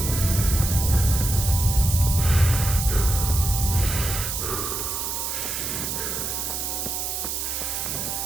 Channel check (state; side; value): noise; right; hiss, 3 dB below the sound